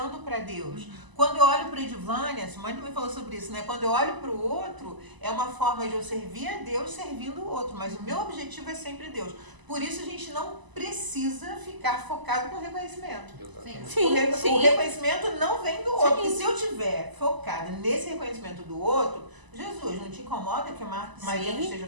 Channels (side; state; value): left; late; 1.0 ms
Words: para Deus. Quando eu olho para a Edvânia, a Simone também falou sobre isso, né? Quando eu olho para o outro, é uma forma de eu servir a Deus servindo o outro. Mas o meu objetivo é sempre Deus. Por isso, a gente não precisa ficar focado com reconhecimento. Exatamente. O reconhecimento não vem do outro. Sim. E se eu estiver focada nesse reconhecimento do outro, Jesus, não te incomoda que a Maria não esteja